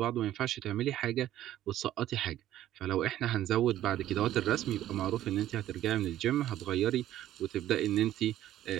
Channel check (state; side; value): quieter; left; 12.9 dB